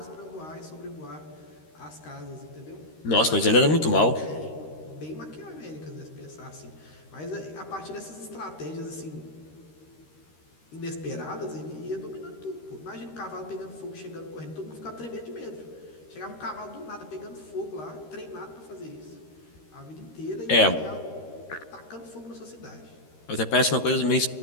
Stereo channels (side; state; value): right; late; 13 ms